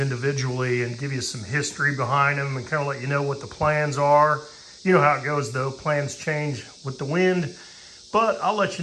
individually and give you some history behind them and kind of let you know what the plans are. You know how it goes though, plans change with the wind, but I'll let you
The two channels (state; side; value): identical; both; correlation 1.00